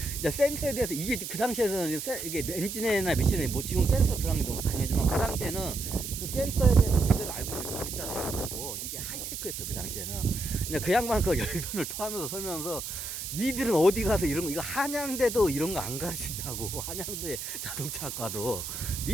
이제 센서에 대해서, 이게 그 당시에서는 이게 엔진이나 미션에 뭐 지금 센서 들어간 게 너무 당연하지만 그 당시에는 그 센서에 대해서 제대로 알고 있는 그 글자도 없고 이게 하이테크였어 그 당시에는. 근데 그 양반은 그걸 열변을 토하면서 설명하면서, 니들은 어디 가서 이런 거, 이거 한양대도 이런 거 안 가르친다고. 한양대 자동차학과도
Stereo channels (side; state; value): right; noise; hiss, 6 dB below the sound